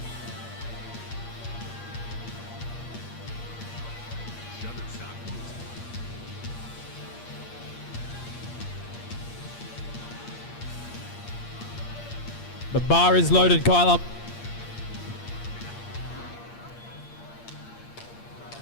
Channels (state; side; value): late; right; 8.6 ms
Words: The bar is loaded, Kyla.